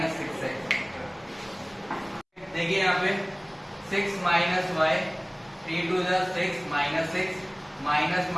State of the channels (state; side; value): identical; both; correlation 1.00